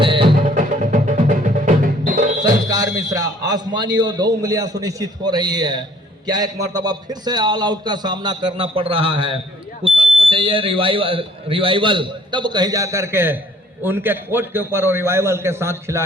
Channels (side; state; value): both; normal; correlation 0.58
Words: संस्कार मिश्रा। आसमानी और 2 उंगलियां सुनिश्चित हो रही है। क्या एक मर्तबा फिर से ऑल आउट का सामना करना पड़ रहा है। कुशल को चाहिए रिवाइवल, तब कहीं जाकर के उनके कोर्ट के ऊपर और रिवाइवल के साथ